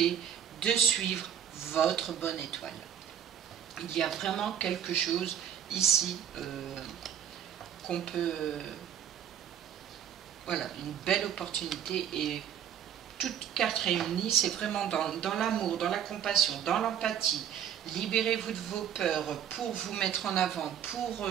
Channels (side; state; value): left; quieter; 9.4 dB